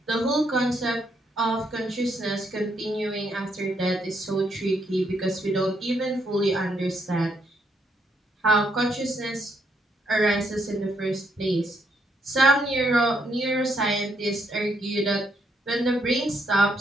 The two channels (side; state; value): both; normal; correlation 0.74